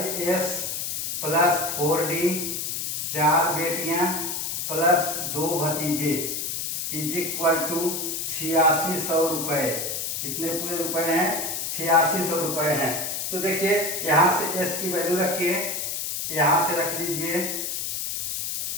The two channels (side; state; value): left; noise; hiss, 3 dB below the sound